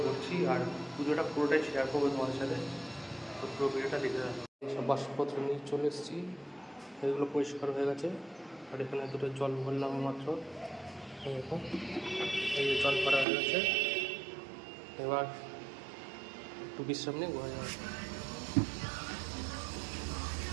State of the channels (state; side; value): drops out; left; at 13.2 s